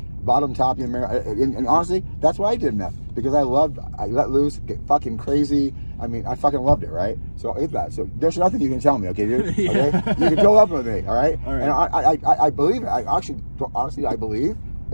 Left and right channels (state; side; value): inverted; both; correlation -1.00